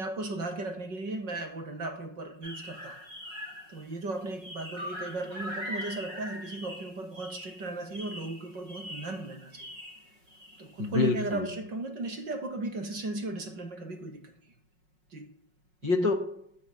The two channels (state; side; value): late; left; 5.4 ms